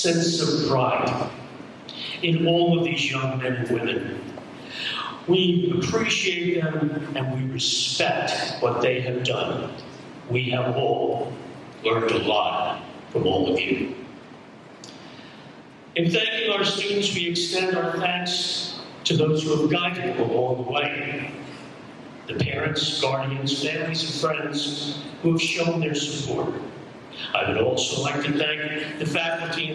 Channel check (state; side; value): identical; both; correlation 1.00